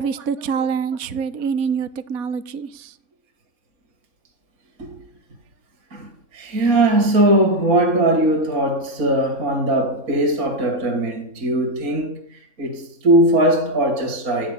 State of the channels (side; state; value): left; late; 3.5 ms